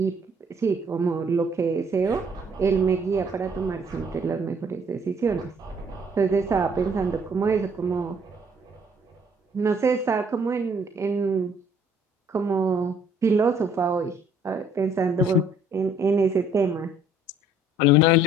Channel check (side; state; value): both; normal; correlation 0.61